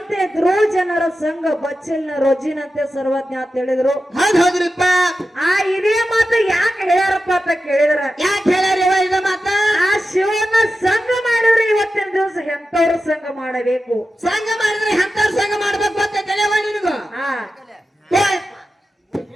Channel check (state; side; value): normal; both; correlation 0.92